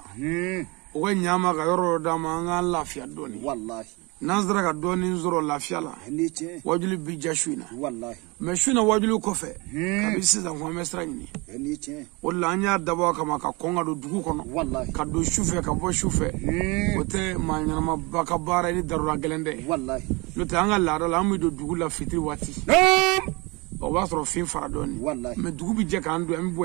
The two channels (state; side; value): quieter; left; 26.9 dB